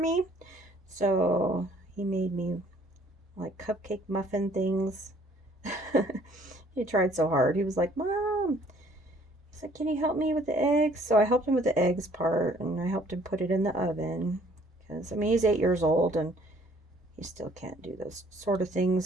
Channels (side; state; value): both; normal; correlation 0.59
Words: So he made me like cupcake muffin things. He tried so hard. He was like, Mom, he's like, can you help me with the eggs? So I helped him with the eggs part, and I helped him put it in the oven. Because, I mean, he's 8 years old, and he still can't do those sort of